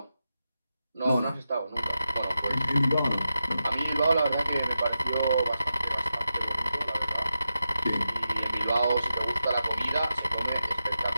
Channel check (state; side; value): inverted; both; correlation -0.90